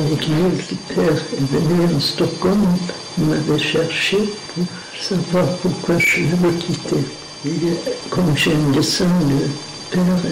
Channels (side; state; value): both; identical; correlation 1.00